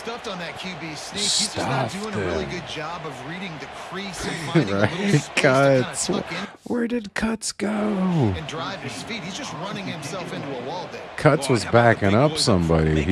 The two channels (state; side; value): identical; both; correlation 1.00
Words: on that QB sneak. He's just not doing a really good job of reading the crease and finding a little space to kind of Cuts. tuck in Where did Cuts go? and drive his feet. He's just running himself into a wall there. Cuts was backing up somebody.